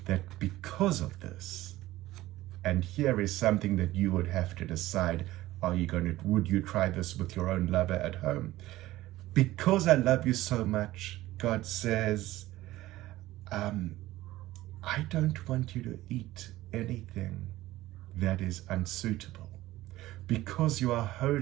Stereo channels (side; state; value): left; quieter; 16.5 dB